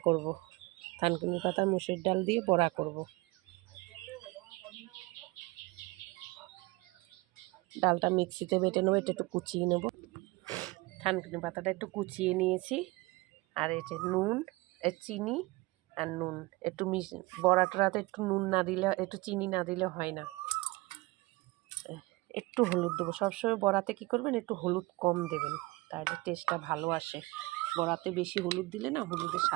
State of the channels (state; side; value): quieter; left; 22.4 dB